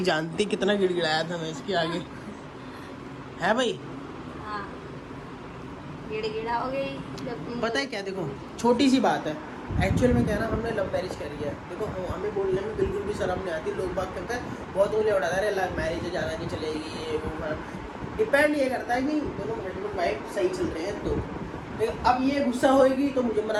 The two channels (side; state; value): both; identical; correlation 1.00